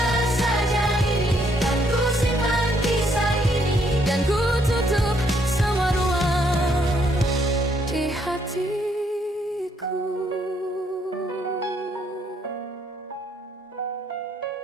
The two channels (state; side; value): normal; both; correlation 0.70